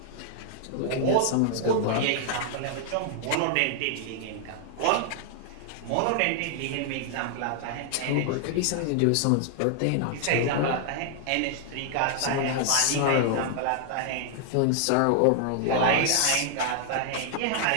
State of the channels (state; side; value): different; both; correlation 0.00